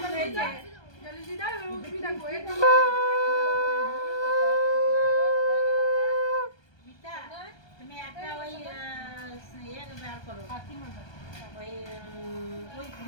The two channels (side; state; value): right; late; 1.3 ms